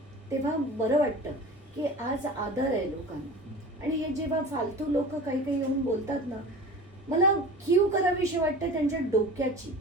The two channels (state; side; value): normal; both; correlation 0.36